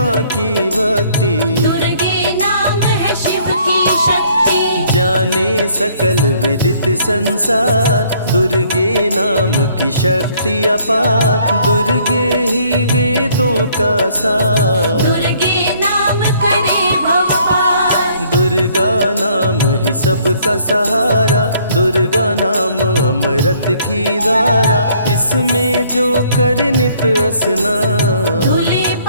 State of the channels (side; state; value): both; inverted; correlation -0.62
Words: की भक्ति, दुर्गे नाम है शिव की शक्ति। जाने सकल विदित संसार, दुर्गे नाम की शक्ति अपार। दुर्गे ही वेदों का सार, दुर्गे नाम करे भव पार। दुर्गा नाम ही सबका सहारा, दुर्गा नाम अमृत की धारा। इसमें जो करे नित स्नान, धुले